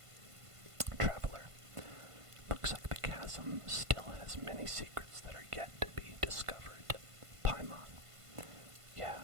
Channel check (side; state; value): left; late; 1.5 ms